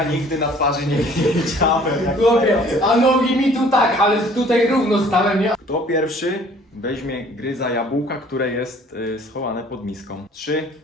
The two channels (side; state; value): both; normal; correlation 0.54